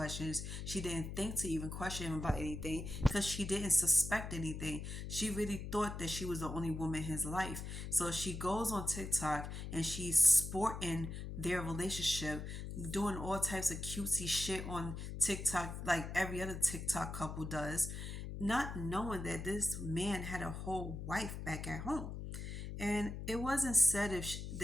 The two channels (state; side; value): noise; left; hum, 7 dB below the sound